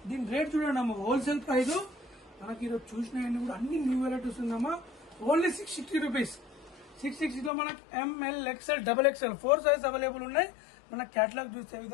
దీని రేట్ చూడండి అమ్మా, హోల్సేల్ ప్రైస్. మనకి ఈరోజు చూసినవన్నీ కూడా అన్ని న్యూ వెరైటీస్ ఉందమ్మా. Only 660 rupees. 660 లో మనకి ML XL XXL 4 size available ఉన్నాయి. మన క్యాటలాగ్ చూసే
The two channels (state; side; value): drops out; right; at 7.5 s